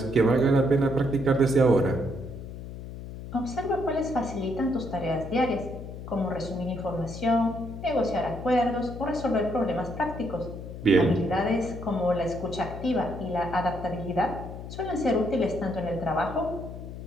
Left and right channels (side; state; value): left; noise; hum, 10 dB below the sound